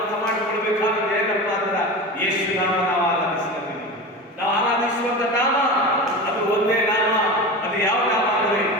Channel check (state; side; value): normal; both; correlation 0.28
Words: ಮಾಡಿಕೊಳ್ಬೇಕಾದ್ರೆ ಏನಪ್ಪ ಅಂದ್ರೆ ಯೇಸು ನಾಮ ನಾವು ಆರಾಧಿಸ್ತೀವಿ ನಾವು ಆರಾಧಿಸುವಂತ ನಾಮ ಅದು ಒಂದೇ ನಾಮ ಅದು ಯಾವ ನಾಮ ಅಂದ್ರೆ